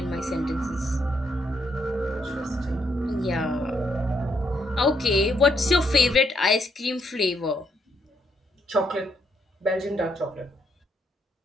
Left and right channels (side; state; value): both; normal; correlation 0.75